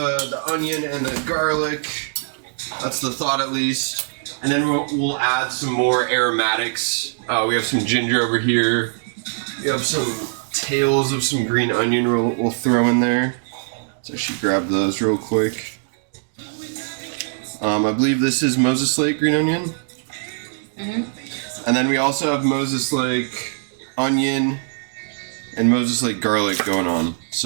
onion and the garlic. That's the thought, at least. And then we'll add some more aromatics. We have some ginger over here. We have some tails of some green onion we'll throw in there. Let's actually grab those real quick. I believe this is Moses Lake green onion. Mm-hmm. And then we also have Moses Lake onion and Moses Lake garlic going on.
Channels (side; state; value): left; silent; digital silence